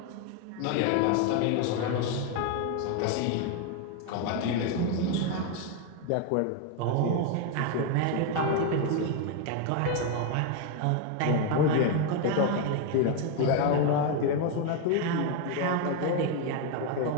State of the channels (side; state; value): both; different; correlation 0.01